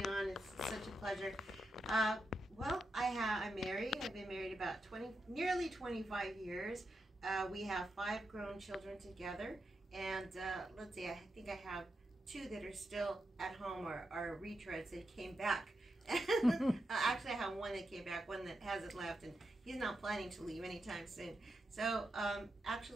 on. It's such a pleasure. Well, I'm married. I've been married about nearly 25 years. We have 5 grown children together, and let's see, I think I have 2 that are still at home or are retreads that came back. Actually, I have 1 that came back, 1 that hasn't left, and he's not planning to leave anytime soon. So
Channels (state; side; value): normal; both; correlation 0.86